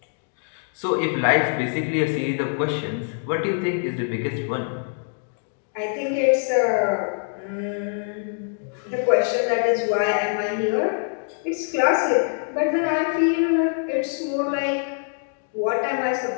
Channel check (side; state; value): right; silent; 63 dB below the other